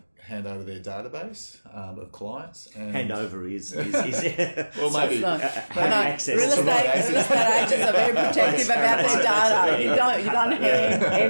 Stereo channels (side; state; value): both; inverted; correlation -1.00